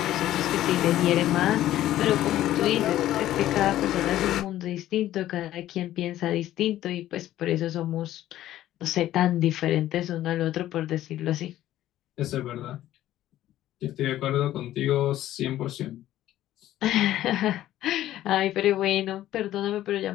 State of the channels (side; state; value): right; quieter; 13.6 dB